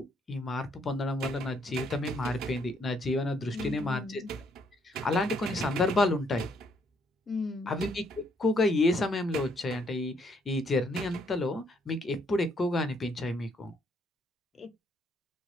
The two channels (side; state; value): both; normal; correlation 0.70